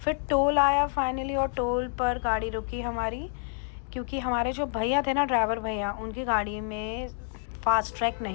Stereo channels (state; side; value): silent; right; 59 dB below the other